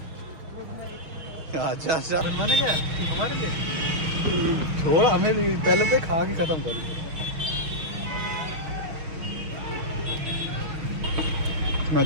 अच्छा अच्छा बनवाने क्या हमारे लिए? छोड़ हमें भी, पहले तो खा के खत्म कर।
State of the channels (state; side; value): late; left; 6.4 ms